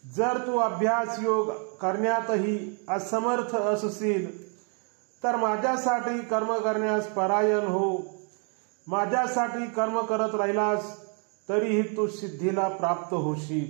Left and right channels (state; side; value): quieter; left; 39.8 dB